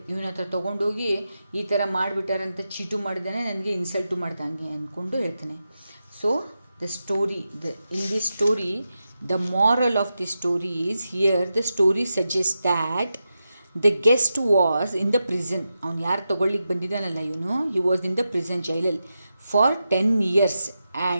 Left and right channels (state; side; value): inverted; both; correlation -0.89